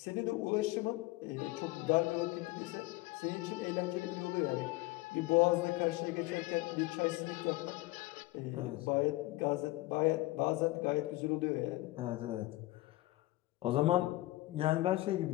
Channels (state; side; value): quieter; right; 19.4 dB